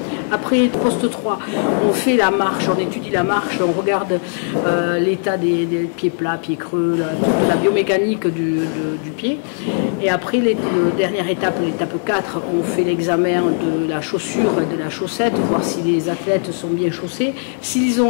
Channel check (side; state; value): right; silent; 62 dB below the other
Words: Après, poste 3, on fait la marche, on étudie la marche, on regarde l'état des pieds plats, pieds creux, la biomécanique du pied. Et après, dernière étape, l'étape 4, on fait l'examen de la chaussure et de la chaussette, voir si les athlètes sont bien chaussés. S'ils